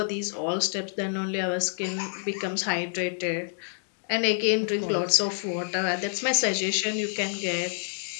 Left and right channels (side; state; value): right; silent; digital silence